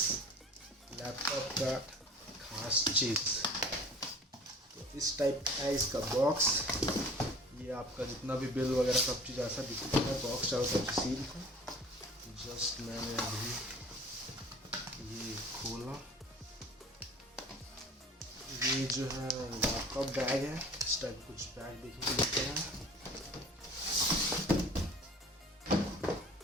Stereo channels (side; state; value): both; normal; correlation 0.45